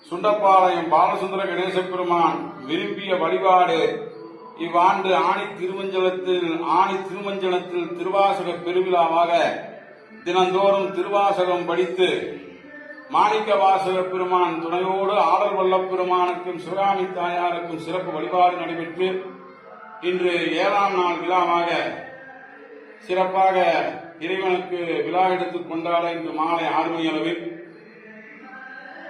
சுண்டப்பாளையம் பாலசுந்தர கணேச பெருமான் விரும்பிய வழிபாடு இவ்வாண்டு ஆணி திருமஞ்சனத்தில் திருவாசக பெருவிழாவாக தினந்தோறும் திருவாசகம் படித்து மாணிக்க வாசக பெருமான் துணையோடு ஆடல் வல்ல பெருமானுக்கும் சிவகாமி தாயாருக்கும் சிறப்பு வழிபாடு நடைபெற்று இன்று 7ஆம் நாள் விழாவாக சிறப்பாக இறைவனுக்கு விழா எடுத்துக் கொண்டாட இன்று மாலை 6 மணி அளவில்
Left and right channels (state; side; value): identical; both; correlation 1.00